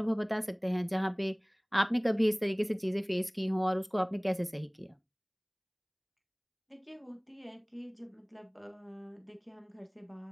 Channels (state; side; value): identical; both; correlation 1.00